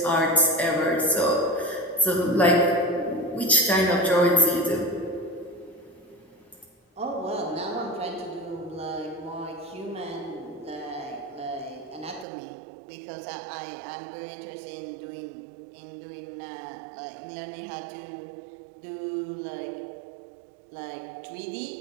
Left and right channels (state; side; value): drops out; left; at 12.2 s